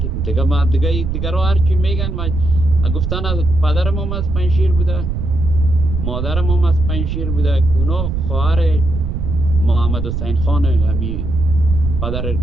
دیگه. ما دیگه رو هرچی میگن ما گفتن از پدرم هم از پنشیر بوده، مادرم هم از پنشیر بوده. اونا خواهر محمد حسین خان همی پدر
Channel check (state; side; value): noise; right; rumble, 2 dB below the sound